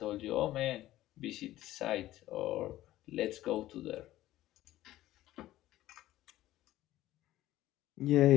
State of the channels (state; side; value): quieter; right; 15.0 dB